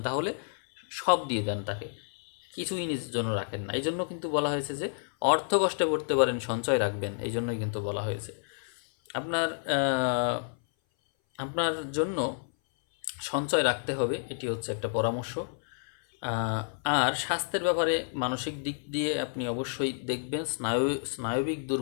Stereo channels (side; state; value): right; silent; 58 dB below the other